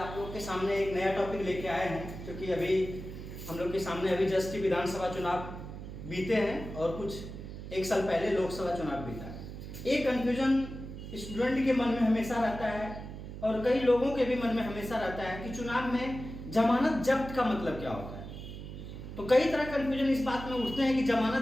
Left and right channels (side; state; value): right; noise; hum, 10 dB below the sound